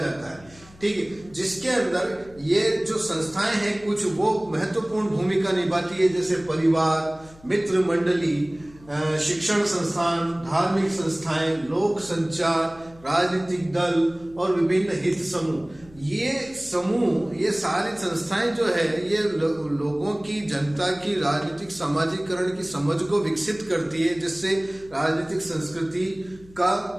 है, ठीक है। जिसके अंदर ये जो संस्थाएं हैं कुछ वो महत्वपूर्ण भूमिका निभाती है, जैसे परिवार, मित्र मंडली, शिक्षण संस्थान, धार्मिक संस्थाएं, लोक संचार, राजनीतिक दल और विभिन्न हित समूह। ये सारी संस्थाएं जो है ये लोगों की, जनता की राजनीतिक समाजीकरण की समझ को विकसित करती है, जिससे राजनीतिक संस्कृति का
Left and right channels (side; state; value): left; noise; hum, 24 dB below the sound